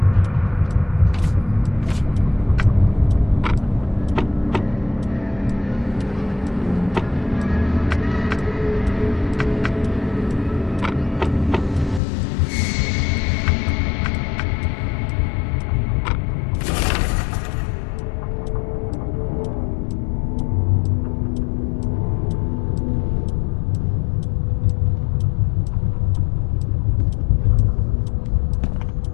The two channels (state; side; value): drops out; right; at 12.0 s